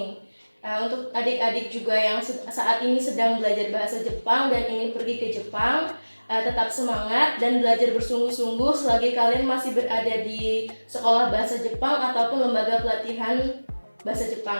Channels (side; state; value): both; inverted; correlation -1.00